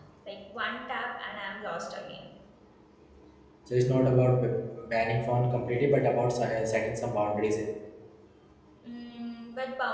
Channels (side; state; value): both; identical; correlation 1.00